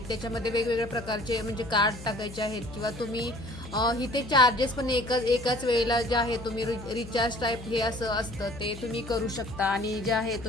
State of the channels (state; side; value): noise; left; hum, 14 dB below the sound